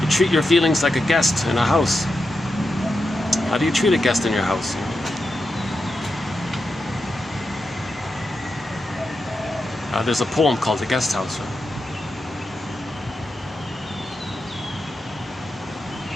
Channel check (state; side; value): normal; both; correlation 0.88